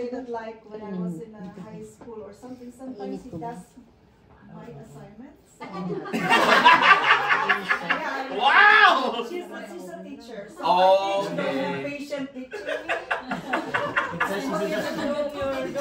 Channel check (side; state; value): both; identical; correlation 1.00